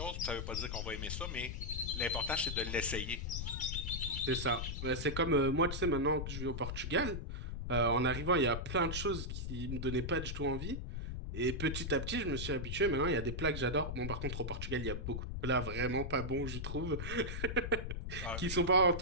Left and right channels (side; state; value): left; noise; rumble, 4 dB below the sound